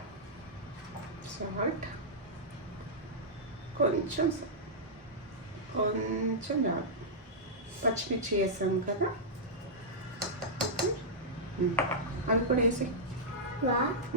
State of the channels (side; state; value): both; normal; correlation -0.10